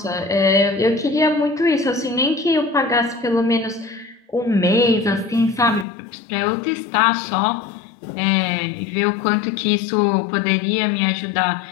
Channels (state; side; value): drops out; right; at 5.9 s